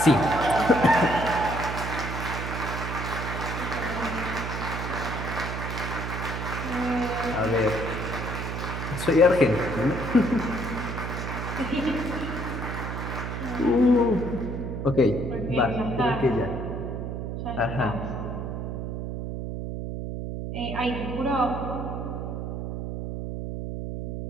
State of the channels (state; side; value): noise; right; hum, 4 dB below the sound